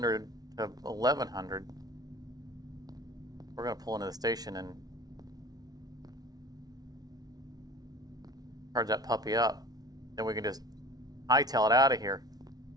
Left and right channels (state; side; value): late; left; 0.19 ms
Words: to 1100. We're gonna pull into the station and charge that puppy up. Then we can just hightail it out of here.